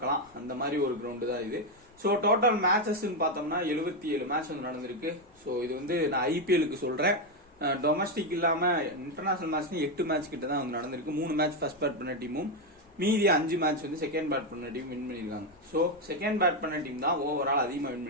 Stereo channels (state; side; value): normal; both; correlation 0.06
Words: அந்த மாதிரி ஒரு கிரவுண்டு தான் இது. ஸோ டோட்டல் மேட்சஸ் பார்த்தோம்னா 77 மேட்ச் வந்து நடந்திருக்கு. ஸோ இது வந்து நான் IPLக்கு சொல்றேன். டொமஸ்டிக் இல்லாம இன்டர்நேஷனல் மேட்ச் 8 மேட்ச் கிட்ட தான் வந்து நடந்திருக்கு. 3 மேட்ச் ஃபர்ஸ்ட் பேட் பண்ண டீமும் மீதி 5 மேட்ச் வந்து செகண்ட் பேட் பண்ண டீம் வின் பண்ணிருக்காங்க. ஸோ செகண்ட் பேட் பண்ண டீம் தான் ஓவரால் அதிகமாக வின்